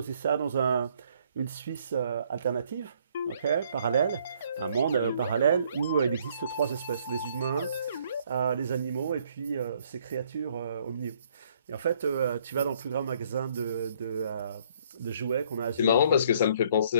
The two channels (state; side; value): inverted; both; correlation -0.64